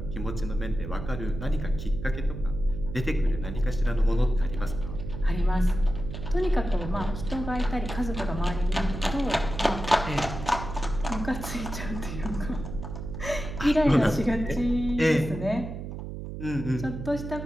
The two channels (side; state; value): right; noise; hum, 8 dB below the sound